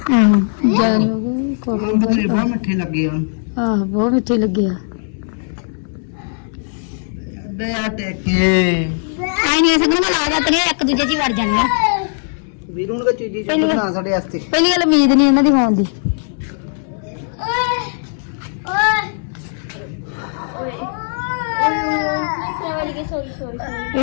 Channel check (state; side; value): silent; right; 67 dB below the other